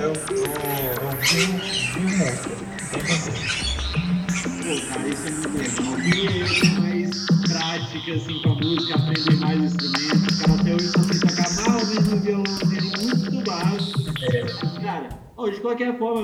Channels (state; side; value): identical; both; correlation 1.00